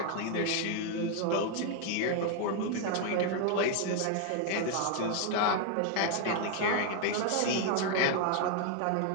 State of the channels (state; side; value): different; both; correlation 0.00